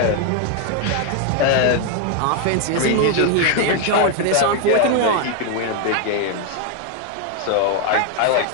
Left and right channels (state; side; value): different; both; correlation 0.01